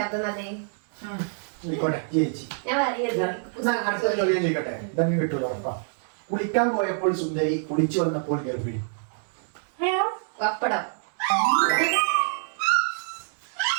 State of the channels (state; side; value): silent; left; 61 dB below the other